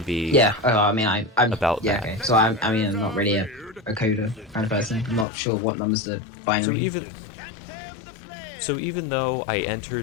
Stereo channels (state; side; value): drops out; right; at 5.2 s